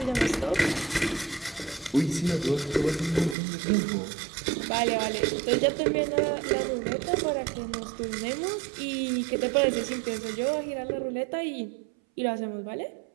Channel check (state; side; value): drops out; left; at 3.4 s